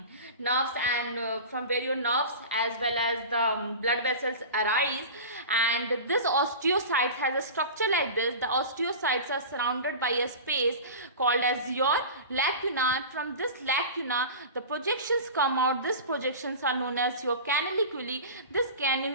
as well as the blood vessels arise. And this osteocyte has a structure like this. The osteocytes are surrounded by a space called as your lacuna. From this lacuna, the projections come out. These projections are known as your canaliculi. This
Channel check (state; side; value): inverted; both; correlation -0.32